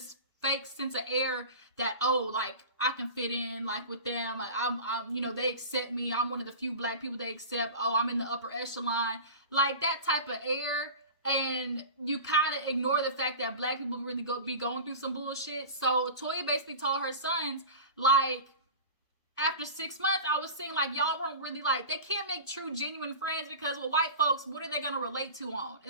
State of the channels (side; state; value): both; inverted; correlation -0.33